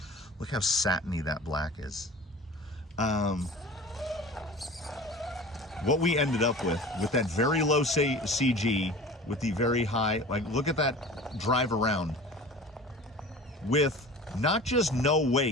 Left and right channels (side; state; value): both; normal; correlation 0.39